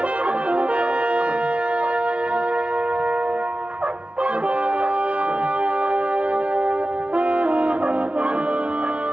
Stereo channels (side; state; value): left; late; 0.061 ms